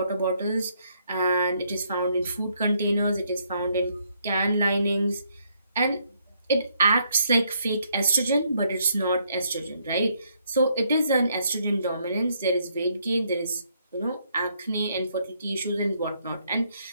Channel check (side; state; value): both; inverted; correlation -0.72